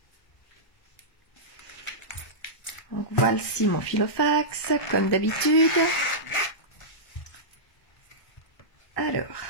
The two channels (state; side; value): late; right; 1.2 ms